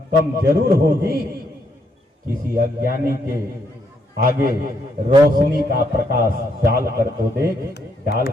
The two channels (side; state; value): both; normal; correlation 0.74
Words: कम जरूर होगी। किसी अज्ञानी के आगे रोशनी का प्रकाश डाल कर तो देख, डाल